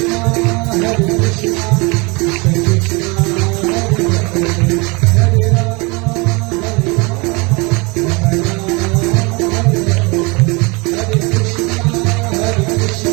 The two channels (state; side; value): quieter; left; 27.7 dB